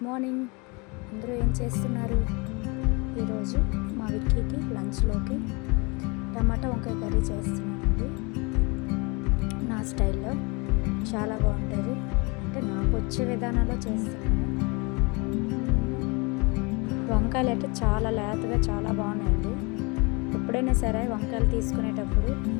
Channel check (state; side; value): quieter; right; 28.9 dB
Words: morning. అందరూ ఏం చేస్తున్నారు? ఈరోజు మా విక్కీకి లంచ్లోకి టమాటా వంకాయ కర్రీ చేస్తున్నానండి. నా స్టైల్లో చాలా బాగుంటుంది, అంటే నాకు వచ్చే విధానంలో చేస్తున్నాను. వంకాయలు అయితే చాలా లేతగా చాలా బాగున్నాయండి. ఎప్పుడైనా సరే వంకాయలు తీసుకునేటప్పుడు